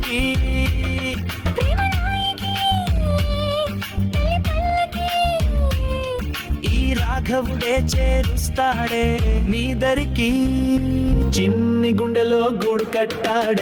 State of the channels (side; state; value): both; identical; correlation 1.00